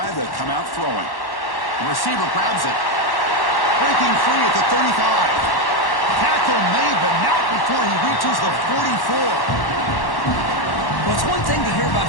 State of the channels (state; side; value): late; right; 1.1 ms